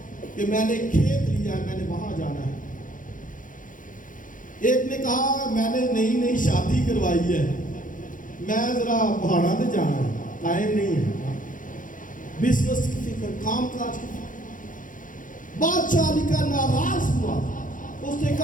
کہ میں نے کھیت لیا ہے، میں نے وہاں جانا ہے۔ ایک نے کہا میں نے نئی شادی کروائی ہے، میں ذرا پہاڑا پہ جانا ہے، ٹائم نہیں ہے۔ بزنس کی فکر، کام کاج کی فکر۔ بادشاہ علی کا ناراض ہوا، اس نے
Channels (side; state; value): right; late; 0.38 ms